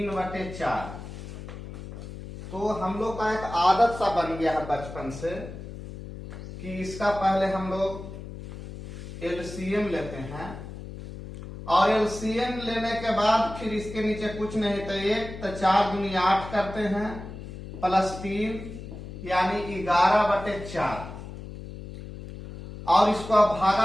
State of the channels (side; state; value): left; noise; hum, 11 dB below the sound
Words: तो हम लोग का एक आदत सा बन गया है बचपन से कि इसका पहले हम लोग एलसीएम लेते हैं और एलसीएम लेने के बाद फिर इसके नीचे कुछ नहीं तो 1 तो 4 दूनी 8 करते हैं +3 यानी 11/4 और इसको अब